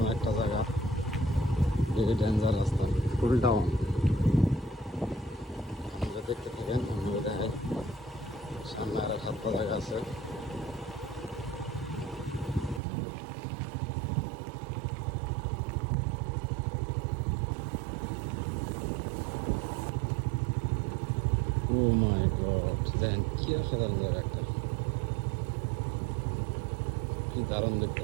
একটা জায়গা, ভেরি ডেঞ্জার রাস্তা, ফুল ডাউন। আপনারা দেখতে থাকেন, আমি দেখাই। সামনে আর এক হাত জায়গা আছে। ও মাই গড, দেখেন কি অসাধারণ জায়গা একটা, কি দারুণ দেখতে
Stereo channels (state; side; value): drops out; left; at 12.8 s